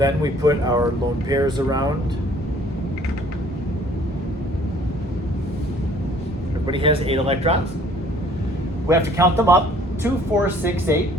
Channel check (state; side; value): normal; both; correlation 0.56